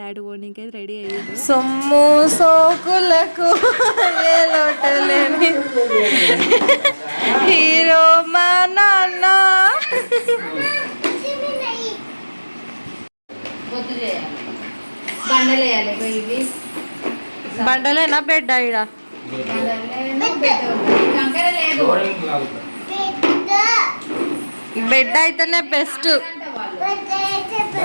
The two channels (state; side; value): inverted; both; correlation -1.00